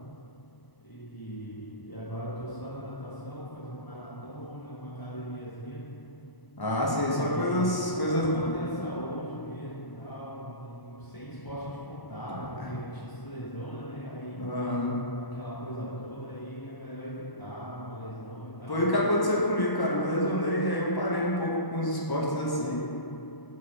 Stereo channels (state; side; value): late; right; 1.1 ms